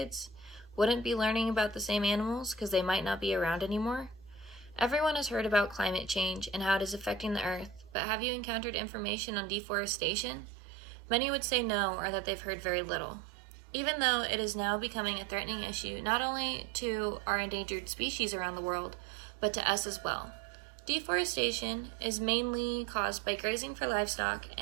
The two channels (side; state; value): left; drops out; at 8.0 s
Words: wouldn't be learning about the same animals because they might not be around anymore? Everyone has heard about climate change and how it is affecting the earth, but have you encountered information on deforestation? Many would say no, or that they've heard very little. Even though it is now becoming a threatening issue not only to our endangered species around the world, but to us as well. Deforestation is mainly caused by grazing for livestock